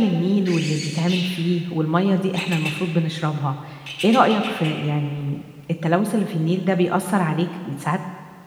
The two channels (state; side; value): identical; both; correlation 1.00